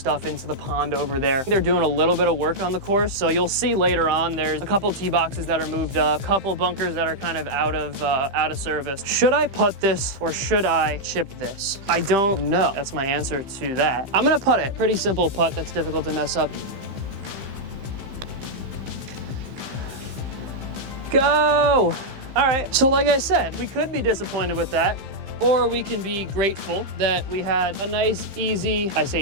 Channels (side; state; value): left; late; 15 ms